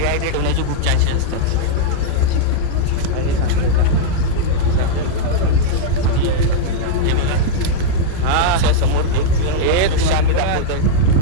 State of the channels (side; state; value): both; different; correlation -0.02